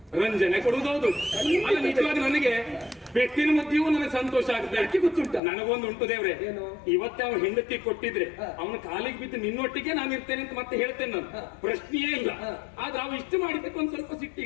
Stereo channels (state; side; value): drops out; right; at 5.4 s